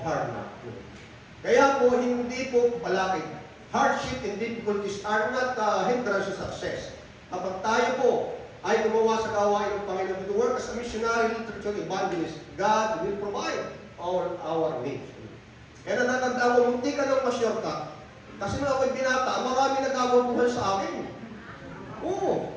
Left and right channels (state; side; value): identical; both; correlation 1.00